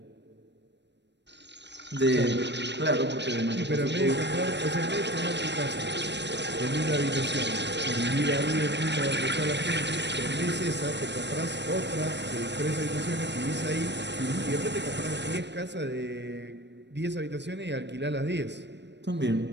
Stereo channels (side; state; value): left; late; 0.51 ms